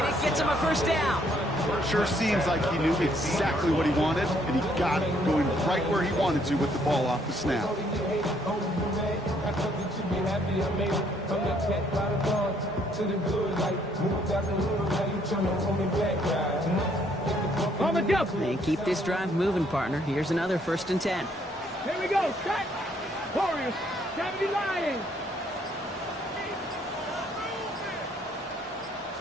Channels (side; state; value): both; normal; correlation 0.67